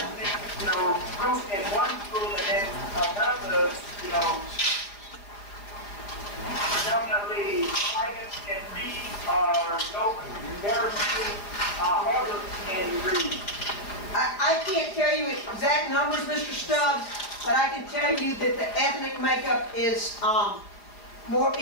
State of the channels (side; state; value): right; late; 5.0 ms